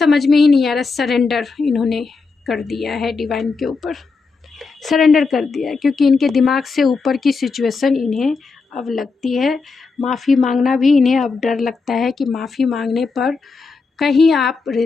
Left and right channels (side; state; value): right; quieter; 4.4 dB